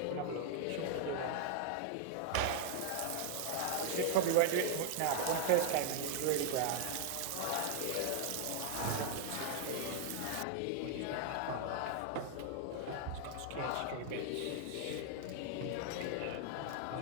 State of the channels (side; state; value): both; different; correlation 0.00